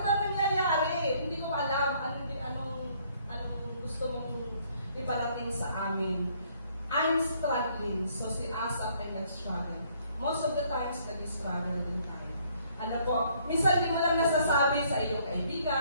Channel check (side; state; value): both; inverted; correlation -0.65